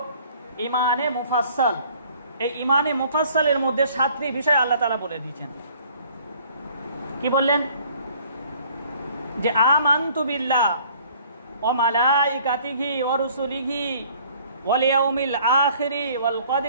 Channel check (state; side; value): inverted; both; correlation -0.56